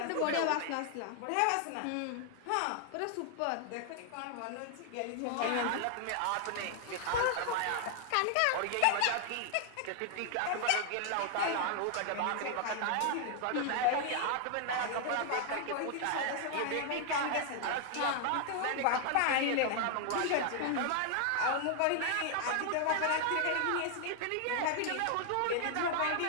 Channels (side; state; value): both; different; correlation 0.00